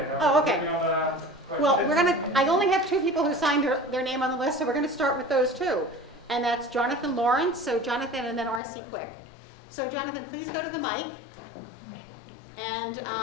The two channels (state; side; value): drops out; right; at 8.6 s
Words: Oh, okay. Well, I only have 2 people who signed their name on the list, so we're gonna start with those 2. And that's Jonathan Lawrence, so Jonathan, and then R.C. Quick. So Jonathan, please go to the mic and